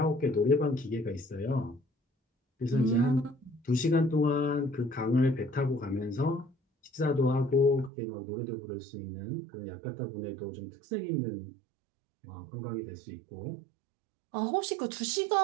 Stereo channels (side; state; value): left; drops out; at 7.9 s